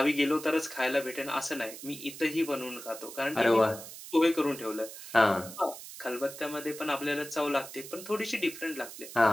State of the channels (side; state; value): right; noise; hiss, 13 dB below the sound